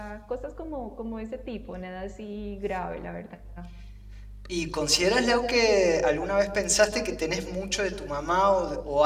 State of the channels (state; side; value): identical; both; correlation 1.00